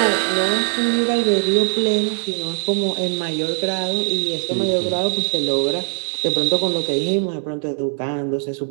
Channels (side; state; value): left; silent; digital silence